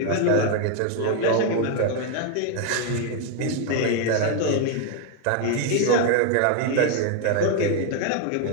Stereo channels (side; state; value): both; different; correlation 0.01